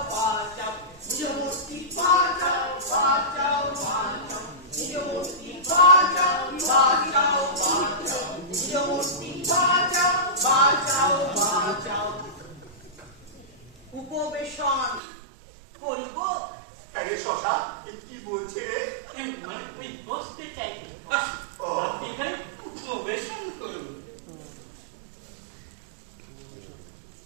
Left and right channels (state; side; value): drops out; left; at 15.0 s